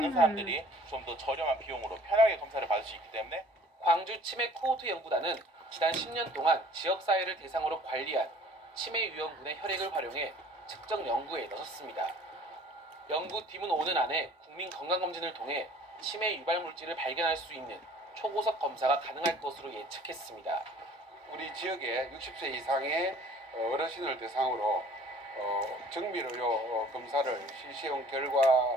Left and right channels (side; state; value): both; normal; correlation 0.52